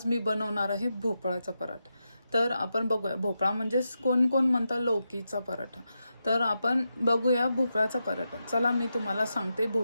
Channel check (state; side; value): inverted; both; correlation -0.87